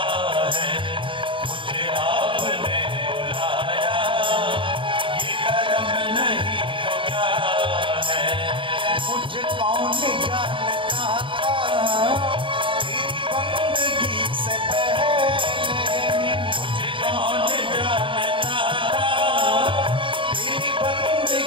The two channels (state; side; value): late; left; 0.25 ms